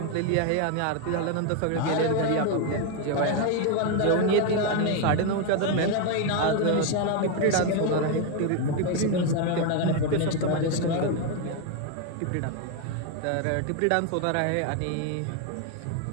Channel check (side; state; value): both; different; correlation 0.01